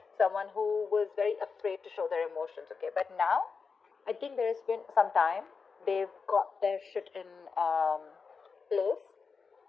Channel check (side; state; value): right; quieter; 5.1 dB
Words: Someone who was very afraid to show their emotions, okay? But now, I think there has been some time. They've got their shit in place.